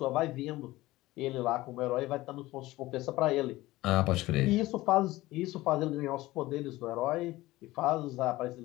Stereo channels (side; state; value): right; quieter; 18.2 dB